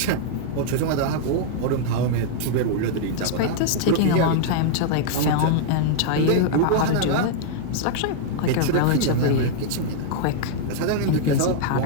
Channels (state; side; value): different; both; correlation -0.01